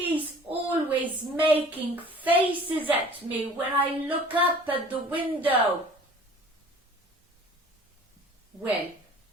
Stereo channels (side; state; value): both; normal; correlation 0.48